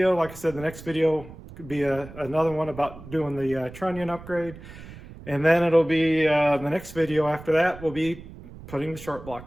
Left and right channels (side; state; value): right; noise; rumble, 16 dB below the sound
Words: Like I said, the next video could be another one about doing the trunnion upgrade. And then it'll be the next video after that, we'll be putting the short